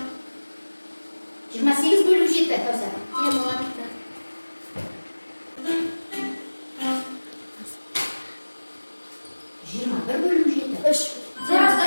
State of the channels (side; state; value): both; inverted; correlation -1.00